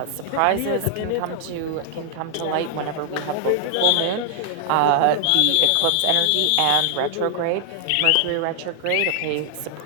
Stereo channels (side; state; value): both; different; correlation 0.00